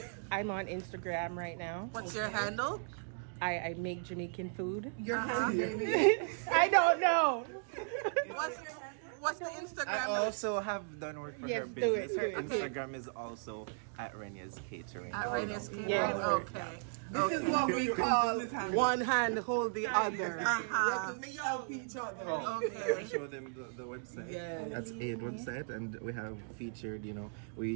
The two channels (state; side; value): silent; left; digital silence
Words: I'm on Instagram right now. What's your handle? I make Jamaican food. Your hand, baby. I don't know. What's the Instagram? I also have done work for Yes, her do business. it, Her do it. Instagram is also @Renya's Catering. At Radius Catering. Yes. Okay. This is what we call one hand hold the other. We Uh-huh. have to help each other. I Okay. show them the website. Yes. That's Aid website, and we have featured.